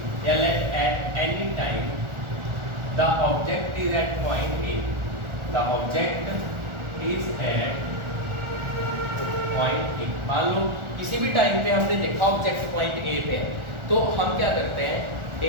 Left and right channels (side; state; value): left; late; 1.4 ms